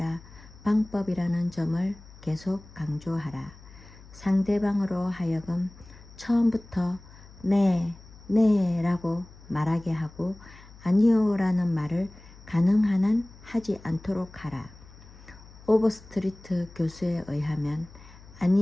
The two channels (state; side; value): noise; left; hum, 21 dB below the sound